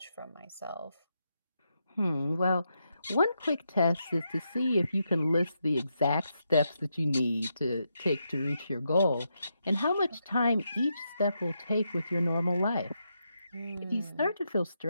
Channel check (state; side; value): inverted; both; correlation -0.83